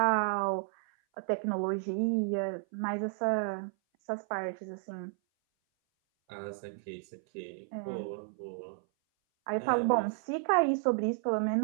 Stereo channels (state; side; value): silent; left; 56 dB below the other